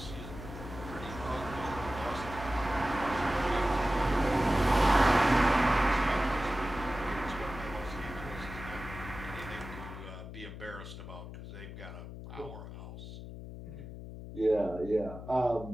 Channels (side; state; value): left; noise; hum, 11 dB below the sound